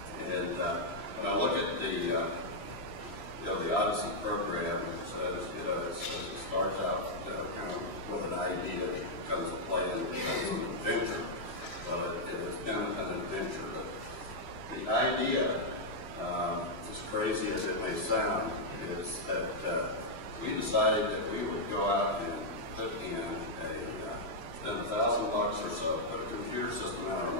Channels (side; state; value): right; late; 3.0 ms